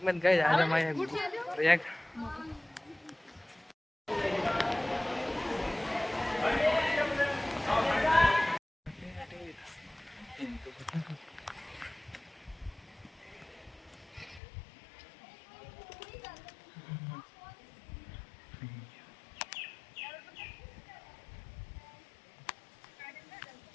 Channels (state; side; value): drops out; right; at 14.4 s